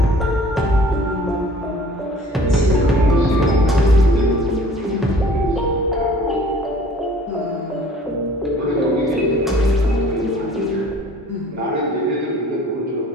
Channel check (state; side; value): normal; both; correlation 0.50